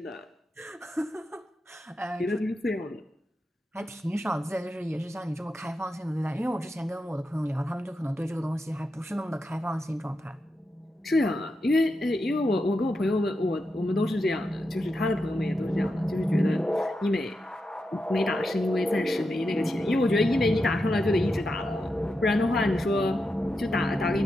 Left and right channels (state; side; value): normal; both; correlation 0.87